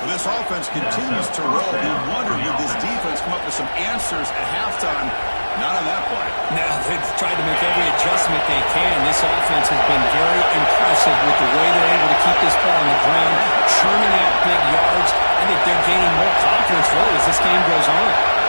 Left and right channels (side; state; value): both; inverted; correlation -1.00